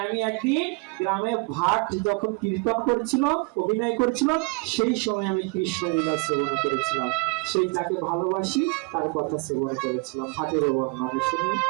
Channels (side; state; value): left; quieter; 30.2 dB